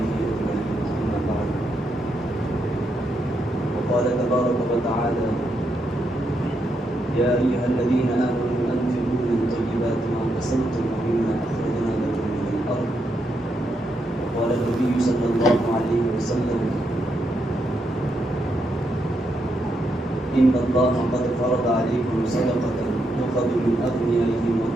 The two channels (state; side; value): normal; both; correlation 0.81